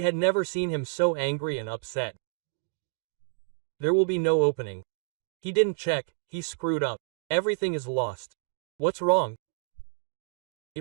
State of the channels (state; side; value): silent; left; digital silence